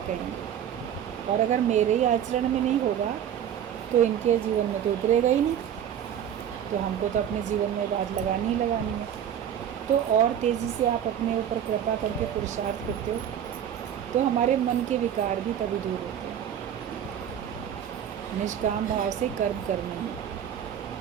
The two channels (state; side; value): quieter; left; 9.5 dB